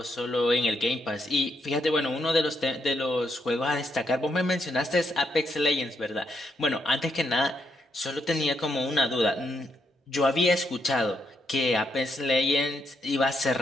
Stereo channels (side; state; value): both; normal; correlation 0.78